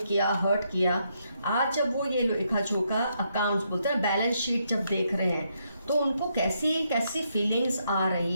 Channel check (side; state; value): both; inverted; correlation -0.77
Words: किया, हर्ट किया, आज जब वो ये लेखा जोखा अकाउंट्स बोलते हैं, बैलेंस शीट जब देख रहे हैं, तो उनको कैसी कैसी फीलिंग्स आ